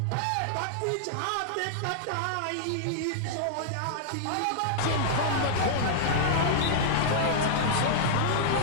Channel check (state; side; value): different; both; correlation -0.01